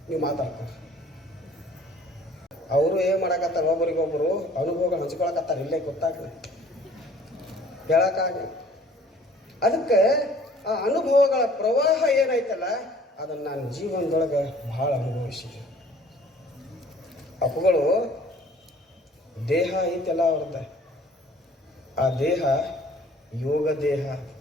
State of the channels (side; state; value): both; normal; correlation 0.54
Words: ನೀವು ಮಾತಾಡ್ತಾರೆ. ಅವರು ಏನ್ ಮಾಡಕತ್ತಾರ, ಒಬ್ಬರಿಗೊಬ್ಬರು ಅನುಭವಗಳು ಹಂಚ್ಕೊಳಕತ್ತಾರ, ಇಲ್ಲೇ ಗೊತ್ತಾಗ ಹೇಳಕ್ಕಾಗ. ಅದಕ್ಕೆ ಆ ಅನುಭವಗಳ ಪ್ರವಾಹ ಏನೈತಲ್ಲ ಅದನ್ನು ನಾನು ಜೀವನದೊಳಗೆ ಬಹಳ ಅನುಭವಿಸಿದೆ. ಅವುಗಳು ದೇಹ ಐತೆಲ್ಲ ಅವ್ರದ್ದ, ಆ ದೇಹ ಯೋಗ ದೇಹ,